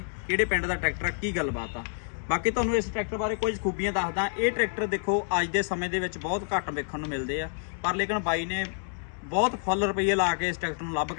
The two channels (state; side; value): silent; right; 59 dB below the other